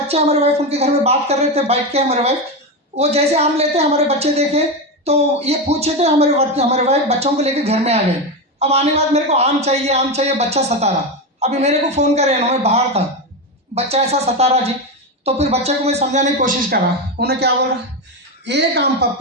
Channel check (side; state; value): both; normal; correlation 0.13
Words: हमारे वाइफ उनके घर में बात कर रहे थे बैठ के, हमारे वाइफ वो जैसे आम लेते हैं हमारे बच्चे देखे तो ये पूछे थे, हमारे वाइफ बच्चों को लेके घर में आ गए। अब आने के बाद मेरे को आम चाहिए, बच्चा सता रहा। अभी मेरे को फ़ोन करे ना, मैं बाहर था, बच्चा ऐसा सता रहा जी। तो फिर बच्चे को मैं समझाने की कोशिश कर रहा, उन्हें क्या बोल रहा, एक आम